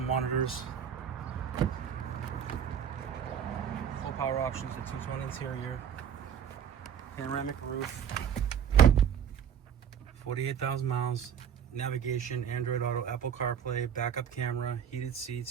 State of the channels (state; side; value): quieter; left; 8.2 dB